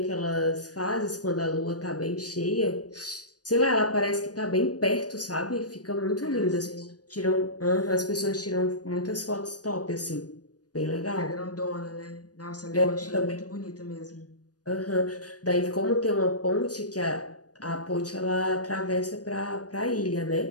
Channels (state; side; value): late; right; 0.68 ms